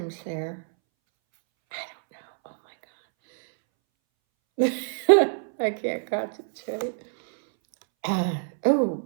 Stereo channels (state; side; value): silent; left; 62 dB below the other